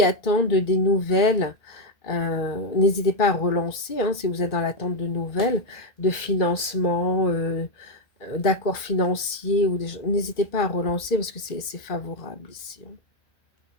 attendent des nouvelles, n'hésitez pas à relancer, hein, si vous êtes dans l'attente de nouvelles, de financement, d'accords financiers, n'hésitez pas à relancer parce que c'est favorable ici, hein.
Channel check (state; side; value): late; right; 1.9 ms